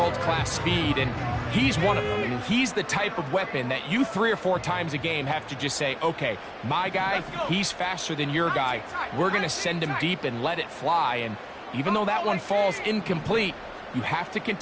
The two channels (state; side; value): identical; both; correlation 1.00